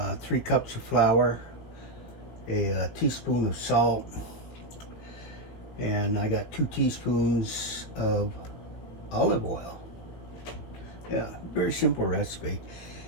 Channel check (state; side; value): late; right; 18 ms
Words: 3 cups of flour, a teaspoon of salt, and I got 2 teaspoons of olive oil. Yeah, very simple recipe.